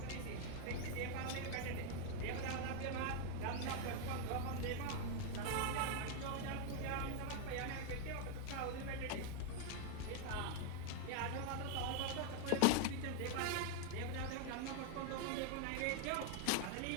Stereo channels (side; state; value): both; different; correlation 0.00